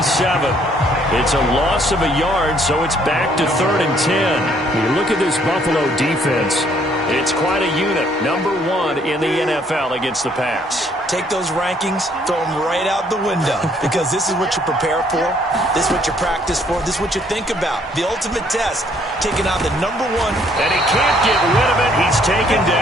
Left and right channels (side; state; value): both; normal; correlation 0.65